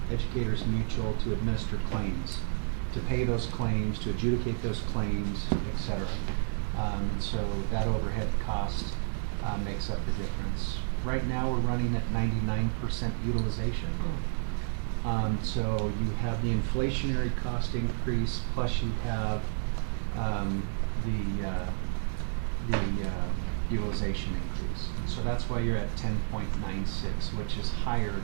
Educators Mutual to administer claims, to pay those claims, to adjudicate those claims, et cetera. And so that overhead cost makes up the difference. Right now we're running at 99% utilization. So you have the inflationary cost increase, plus you have the utilization increase. And so that's why you're at 10.96, which is higher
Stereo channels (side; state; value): left; silent; digital silence